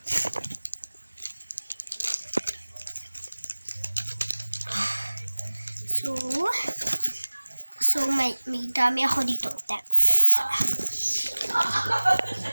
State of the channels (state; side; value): inverted; both; correlation -1.00